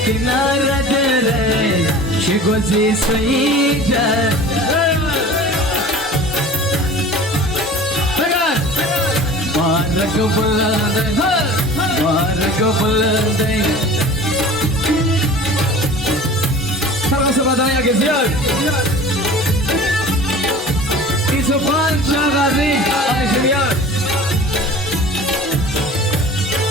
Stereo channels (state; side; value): normal; both; correlation 0.41